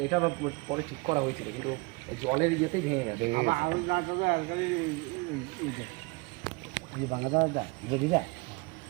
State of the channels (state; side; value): quieter; left; 26.3 dB